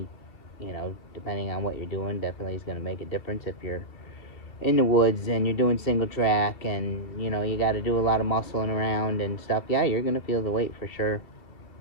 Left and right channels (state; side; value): late; right; 2.6 ms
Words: you know, depending on what you're doing, definitely is going to make a difference. If you're in the woods and you're doing single track and, you know, you got to do a lot of muscling around and stuff, yeah, you're going to feel the weight for sure.